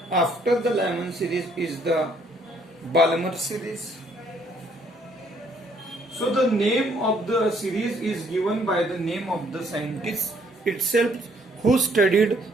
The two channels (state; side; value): normal; both; correlation 0.66